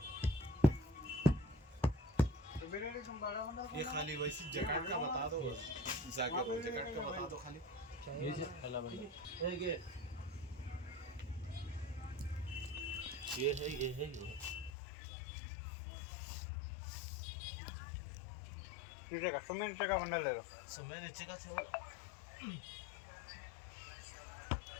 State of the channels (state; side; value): drops out; right; at 14.7 s